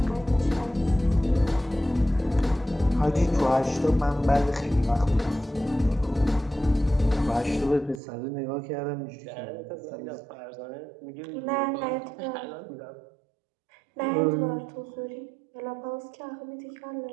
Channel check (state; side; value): drops out; left; at 8.0 s